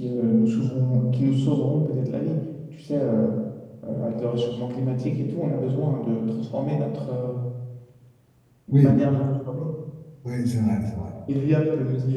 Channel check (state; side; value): identical; both; correlation 1.00